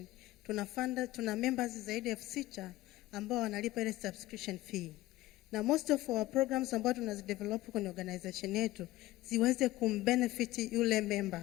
Tuna members zaidi ya 6,000 ambao wanalipa ile subscription fee. Na most of our programs ambao tunazidevelop kwenye organization yetu ziweze kumbenefit yule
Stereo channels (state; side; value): quieter; right; 17.0 dB